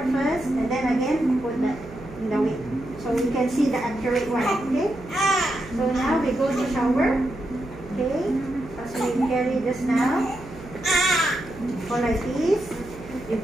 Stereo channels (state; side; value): noise; right; hum, 16 dB below the sound